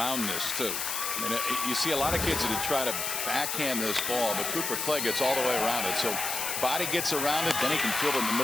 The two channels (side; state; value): left; noise; hiss, 2 dB below the sound